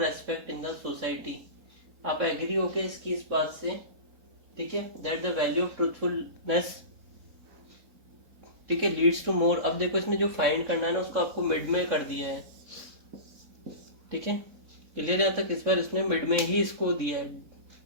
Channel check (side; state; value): left; late; 3.6 ms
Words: respect in the society. आप एग्री हो के इसकी इस बात से, ठीक है, that the value of truthfulness, ठीक है, लीड्स टू मोर। अब देखो इसमें जो फाइंड करना है ना उसको आपको मिड में कर दिया है। ठीक है, क्लियर है तक। इस बार इसने मिड में ही इसको दिया है।